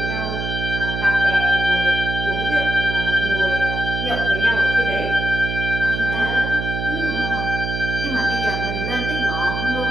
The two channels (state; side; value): noise; right; hum, 4 dB below the sound